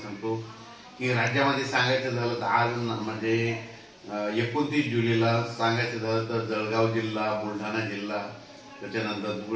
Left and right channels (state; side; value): identical; both; correlation 1.00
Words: सांगतो की राज्यामध्ये सांगायचं झालं तर आज म्हणजे 29 जुलैला सांगायचं झालं तर जळगाव जिल्हा, बुलढाणा जिल्हा, त्याच्यानंतर